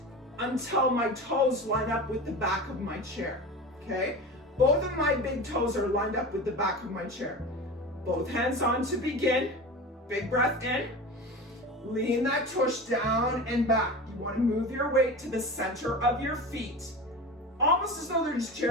until my toes line up with the back of my chair. Okay? Both of my big toes are lined up with the back of my chair. Both hands on to begin. Big breath in. Lean that tush down and back. You want to move your weight to the center of your feet. Almost as though there's a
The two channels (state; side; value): normal; both; correlation 0.30